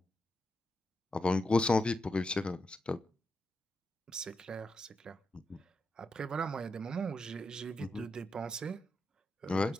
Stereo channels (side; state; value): both; normal; correlation 0.86